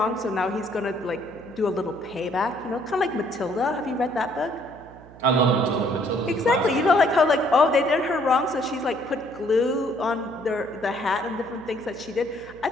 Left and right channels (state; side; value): noise; right; hum, 20 dB below the sound